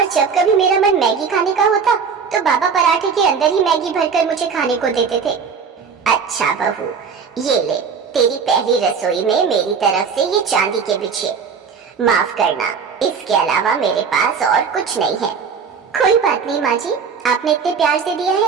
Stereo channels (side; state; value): left; quieter; 6.0 dB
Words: जब कभी मेरा मन मैगी खाने का होता तो बाबा पराठे के अंदर ही मैगी भरकर मुझे खाने को देते थे। अच्छा बहू, ये ले, तेरी पहली रसोई में मेरी तरफ से ये चांदी के बिछे। माफ करना, इसके अलावा मेरे पास और कुछ नहीं है। कोई बात नहीं माँ जी, आपने इतने प्यार से दिया